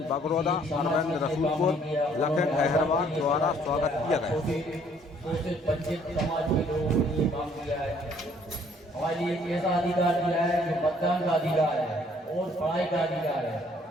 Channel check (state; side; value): normal; both; correlation 0.62